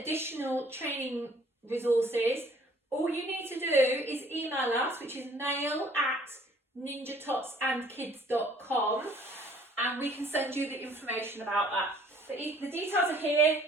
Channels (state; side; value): normal; both; correlation 0.57